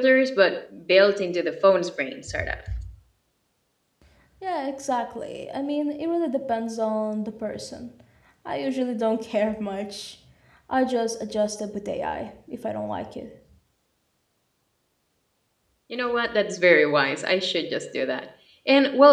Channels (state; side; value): identical; both; correlation 1.00